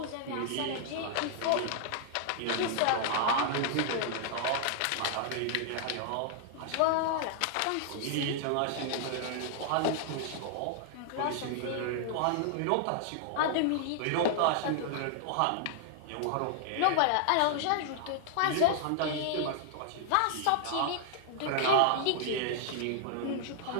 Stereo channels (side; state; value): both; different; correlation 0.00